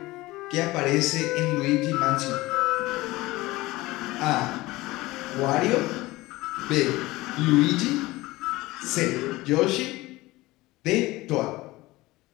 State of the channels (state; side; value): quieter; right; 19.6 dB